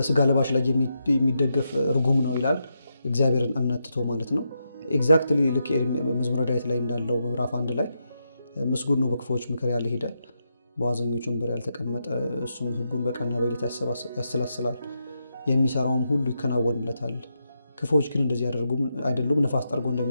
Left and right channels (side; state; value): both; inverted; correlation -0.84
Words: ለባሽ ላይ የሚደገፍ ርጉም ነው ይላል፣ እግዚአብሔርን እምነት ትቶ ማለት ነው። ኤግዛክትሊ ልክ መዝሙረ ዳዊት ላይ እንዳለው ምዕራፍ 1 ላይ ምስጉን ነው በክፉዎች ምክር ያልሄደ፣ በዋዘኞች ወንበር ያልተቀመጠ፣ እሱም ሕጉን በቀንና በሌሊት ያሰላስላል፣ የሚሰራውም ሁሉ ይከናወንለታል። ክፉዎች ግን እንደዚህ አይደሉም፣ ነፋስ ጠርጎ